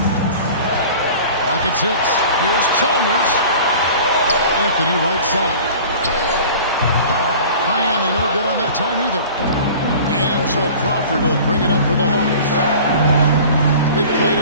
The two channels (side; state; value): both; inverted; correlation -0.42